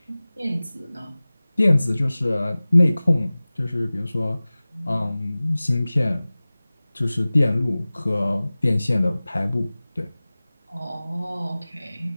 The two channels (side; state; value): both; inverted; correlation -0.98